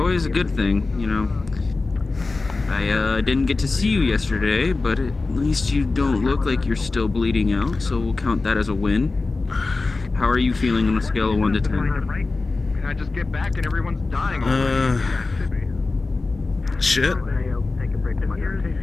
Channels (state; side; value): quieter; right; 3.6 dB